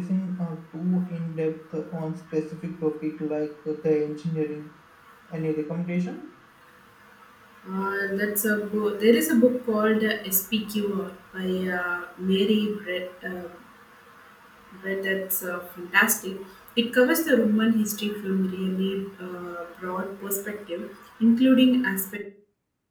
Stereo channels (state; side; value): identical; both; correlation 1.00